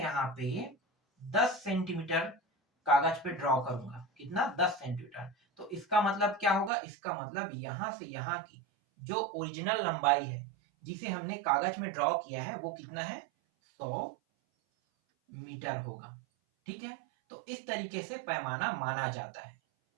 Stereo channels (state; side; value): drops out; left; at 6.7 s